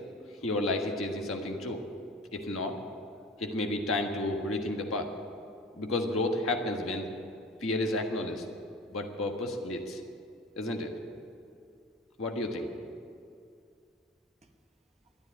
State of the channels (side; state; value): both; normal; correlation 0.37